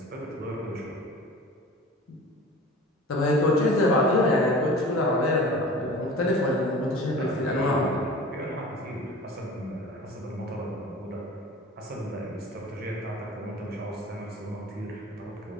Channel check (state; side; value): normal; both; correlation 0.40